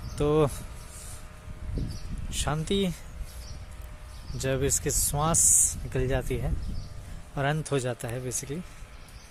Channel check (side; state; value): both; identical; correlation 1.00